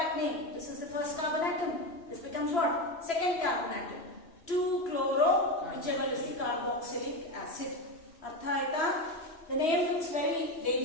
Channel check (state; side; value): late; right; 3.0 ms